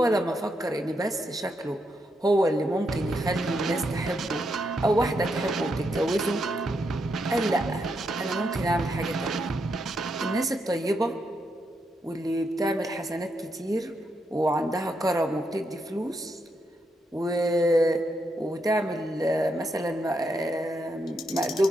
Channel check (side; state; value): both; normal; correlation 0.81